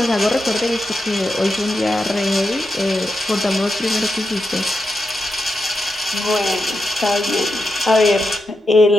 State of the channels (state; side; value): normal; both; correlation 0.86